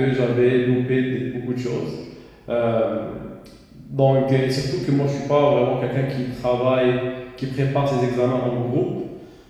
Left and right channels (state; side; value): identical; both; correlation 1.00